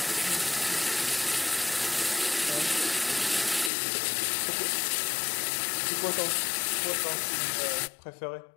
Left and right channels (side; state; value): right; drops out; at 3.7 s